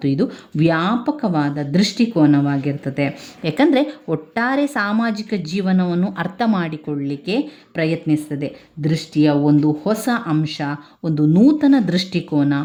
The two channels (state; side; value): identical; both; correlation 1.00